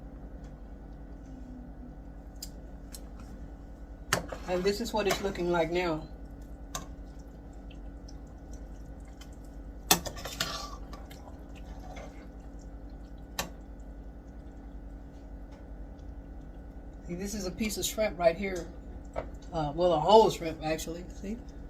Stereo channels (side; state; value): both; identical; correlation 1.00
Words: And this is what it's looking like now. See, this is a piece of shrimp right here. Well, a whole shrimp actually. See?